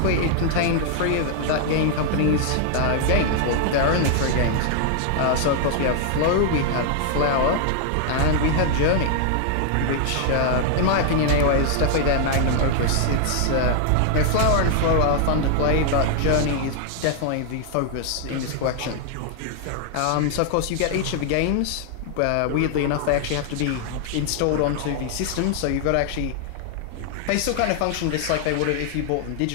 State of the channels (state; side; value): different; both; correlation 0.00